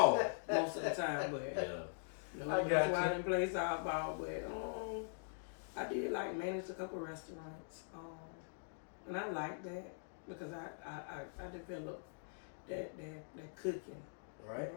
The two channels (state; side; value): silent; right; digital silence